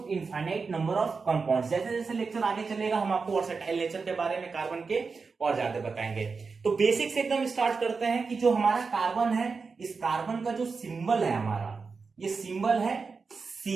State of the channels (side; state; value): left; quieter; 4.8 dB